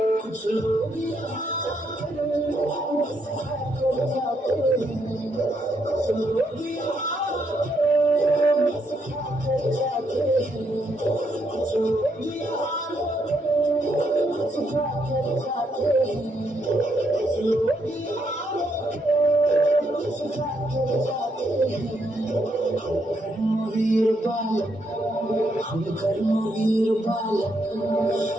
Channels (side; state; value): both; normal; correlation 0.76